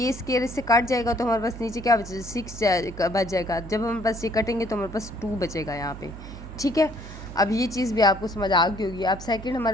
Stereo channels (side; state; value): right; noise; hum, 13 dB below the sound